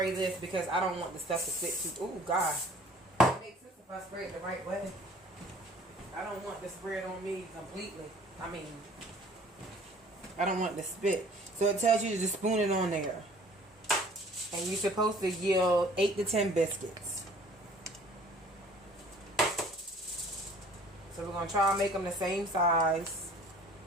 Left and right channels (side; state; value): both; normal; correlation 0.51